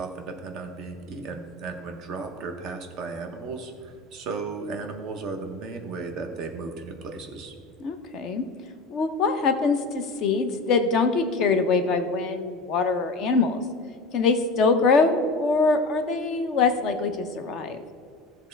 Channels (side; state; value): right; quieter; 3.2 dB